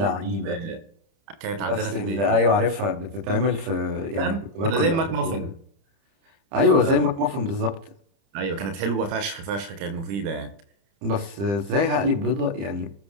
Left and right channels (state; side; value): late; left; 30 ms